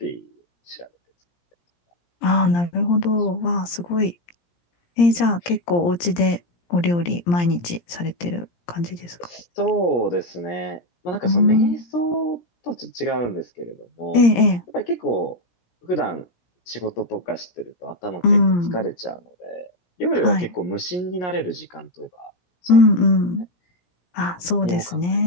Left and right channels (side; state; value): right; late; 17 ms